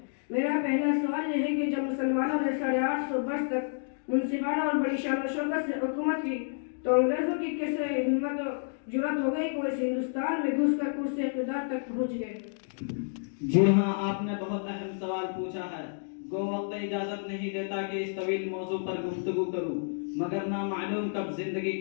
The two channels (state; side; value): silent; right; digital silence